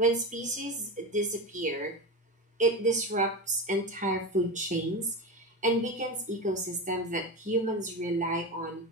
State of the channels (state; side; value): normal; both; correlation 0.21